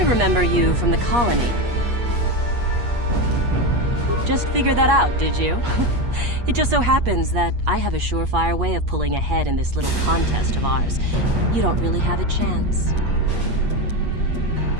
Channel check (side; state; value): left; late; 8.4 ms